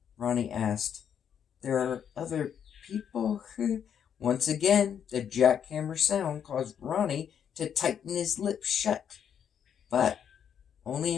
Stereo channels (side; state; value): right; quieter; 8.4 dB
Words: Ronnie asked, "There are other people?" Once again, the jackhammer sound caused Ronnie to tighten his lips shut, but only